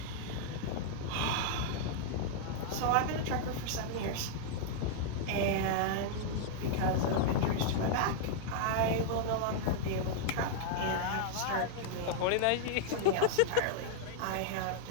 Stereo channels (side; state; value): both; different; correlation -0.01